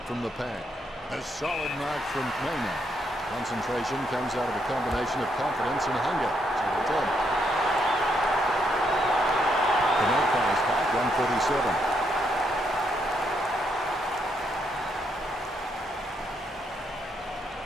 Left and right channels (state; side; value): normal; both; correlation 0.76